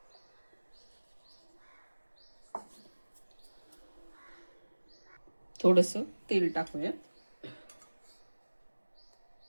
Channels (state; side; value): inverted; both; correlation -1.00